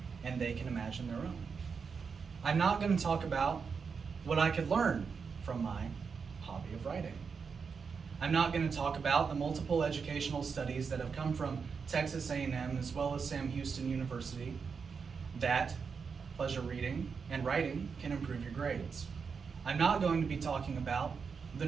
and they can imagine their own. I'm not going to talk about what I could learn from my hobby of writing. I'm not going to talk about the multiple educational studies that have come from Texas A&M as well as Sam Houston University that pleasure reading and writing can improve your grades. I'm not going to be talking about the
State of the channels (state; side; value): quieter; left; 5.7 dB